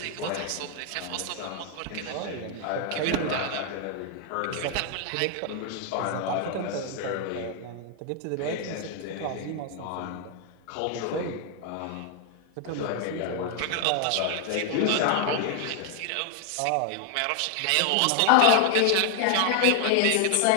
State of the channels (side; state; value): both; different; correlation 0.00